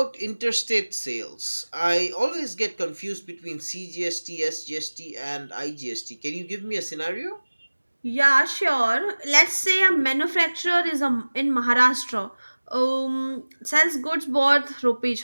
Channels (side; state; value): both; inverted; correlation -1.00